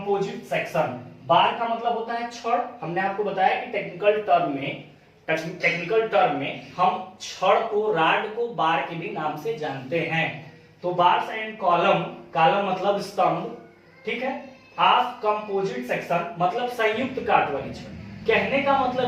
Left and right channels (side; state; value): both; identical; correlation 1.00